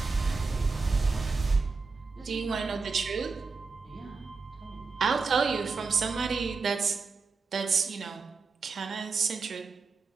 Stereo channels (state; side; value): quieter; left; 4.5 dB